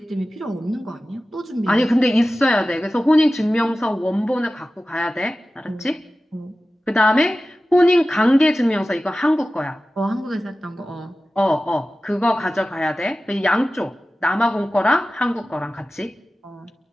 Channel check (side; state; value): both; normal; correlation 0.95